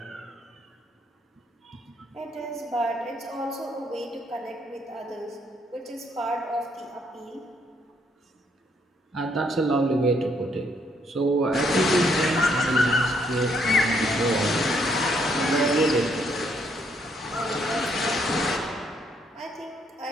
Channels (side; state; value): both; normal; correlation 0.71